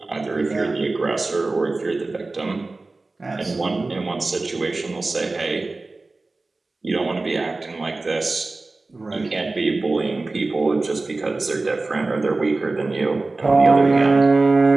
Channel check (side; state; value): left; quieter; 3.3 dB